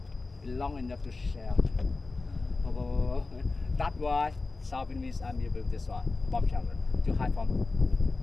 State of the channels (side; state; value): right; quieter; 3.7 dB